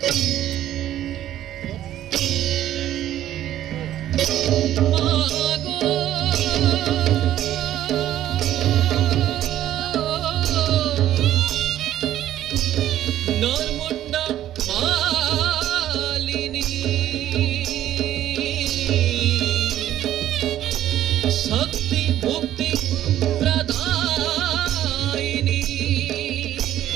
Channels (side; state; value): left; quieter; 12.3 dB